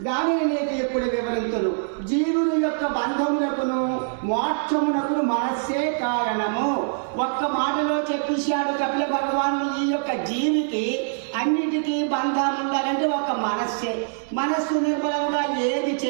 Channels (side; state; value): left; silent; 63 dB below the other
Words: దానిని నీకు ఇప్పుడు వివరించును. జీవుని యొక్క బంధములకును మోక్షమునకును మనస్సే కారణము. ఒక్క మాటలో చెప్పేశాడు కపిల భగవానుడు. ఈ యొక్క జీవికి అన్నిటికీ బంధం ఉండాలంటే ఒక్క మనస్సే. మనస్సు నిర్మలంగా ఏది